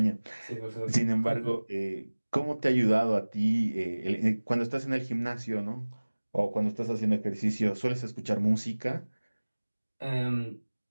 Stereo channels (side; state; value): both; inverted; correlation -1.00